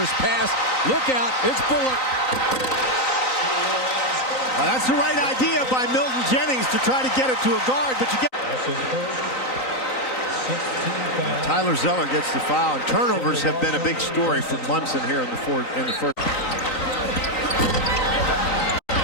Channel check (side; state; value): right; late; 3.9 ms